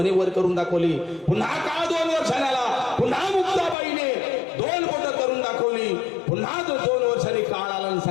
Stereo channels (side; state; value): right; drops out; at 3.8 s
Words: वर करून दाखवली. पुन्हा काळ 2 वर्षांनी आला. पुन्हा मुक्ताबाईने 2 बोट करून दाखवली. पुन्हा 2 वर्षांनी काळ आला आणि